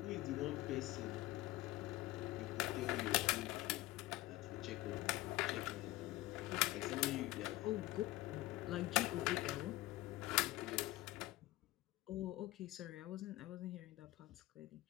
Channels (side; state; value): right; quieter; 17.8 dB